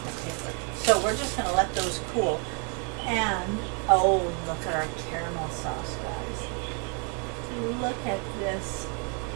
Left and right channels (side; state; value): left; quieter; 37.1 dB